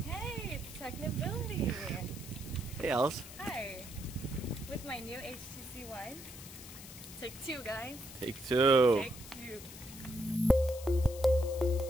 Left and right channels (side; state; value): left; noise; hiss, 14 dB below the sound